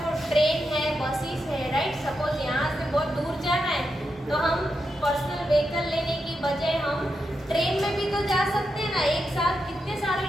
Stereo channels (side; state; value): both; normal; correlation 0.86